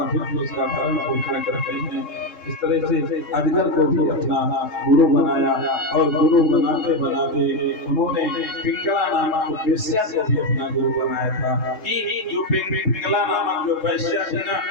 फिर उसका भरण पोषण करते हैं। इस तरह से अजगर को भी अपना गुरु बनाया और गुरु बनाते बनाते उन्होंने पिंगला नामक वेश्या को भी अपना गुरु बनाया था। कि जो पिंगला नामक जो वेश्या थी ना,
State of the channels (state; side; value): late; right; 3.7 ms